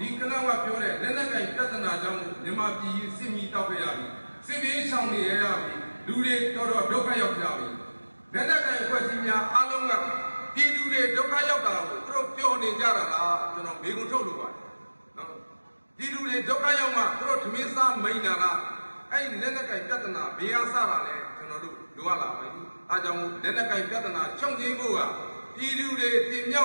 ီကနကပြောတဲ့လက်နက်ကင်ပြဿနာကြောင့်မြန်မာပြည်စစ်မီတောက်ခဲ့ရပြီစစ်ဘေးရှောင်နေရပြီလူတွေတော်တော်ဒုက္ခရောက်ကြပြီလက်နက်ကင်အဖွဲ့အစည်းများအားလုံးကပြည်သူတွေဒုက္ခရောက်တာကိုသူတို့ပြောနေကြတာလားကျွန်တော်မေးခွန်းထုတ်လို့ပါတယ်နော်ပြည်သူတွေဒုက္ခရောက်မှသူတို့ဓမင်းစားမိန်တာလားအဲ့ဒီလက်နက်ကင်ပြဿနာဘေးရစတာလဲကျွန်တော်တို့လိုရလာပါပြီအားကြောင့်လက်နက်ကင်ပြဿနာချုပ်ငြိမ်းဖို့ကပြည်သူတွေတင်မြော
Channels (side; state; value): both; inverted; correlation -1.00